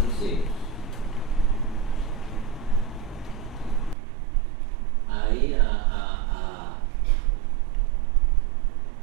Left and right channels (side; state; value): left; drops out; at 4.0 s